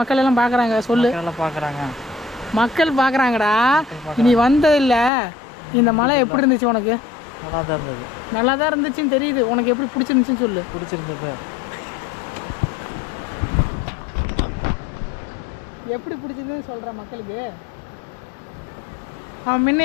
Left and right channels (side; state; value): right; drops out; at 5.1 s